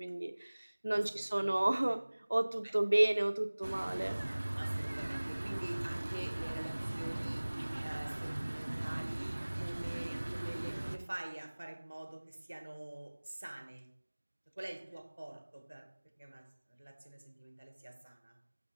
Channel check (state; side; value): inverted; both; correlation -1.00